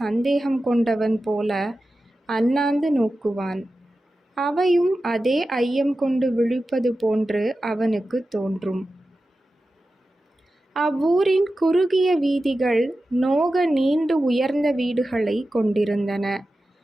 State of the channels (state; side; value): normal; both; correlation 0.93